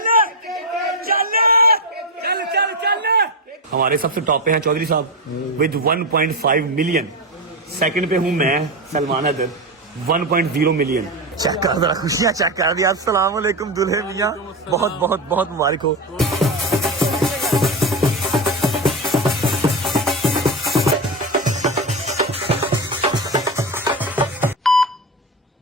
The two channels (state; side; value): normal; both; correlation 0.15